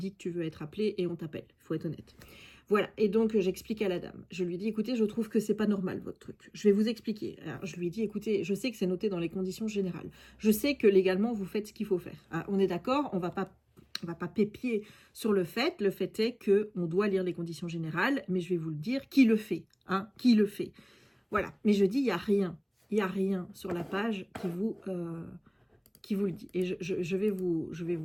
que tu veux être appelé et on t'appelle, il faut être honnête. Voilà, et donc j'explique à la dame. Je lui dis, écoutez, je trouve que c'est pas normal votre truc. Je vais vous expliquer. Alors, je lui dis, écoutez, je sais que c'est noté dans les conditions générales. Je sais que légalement, vous faites ce qu'il faut faire. Ah, on est d'accord, on va pas pépier sur le fait. Le fait est qu'on doit lire les conditions générales, mais je vais vous le dire, qui le fait, hein, qui le fait. Voilà, mais je dis, il n'y a rien sur la page qui vous le dit. Et je vais vous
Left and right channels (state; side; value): identical; both; correlation 1.00